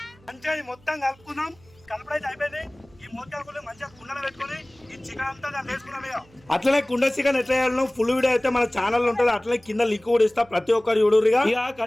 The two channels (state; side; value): noise; right; hum, 28 dB below the sound